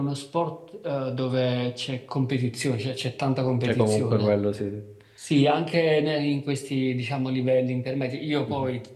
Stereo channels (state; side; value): identical; both; correlation 1.00